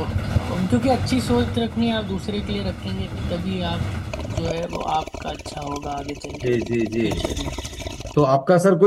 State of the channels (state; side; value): identical; both; correlation 1.00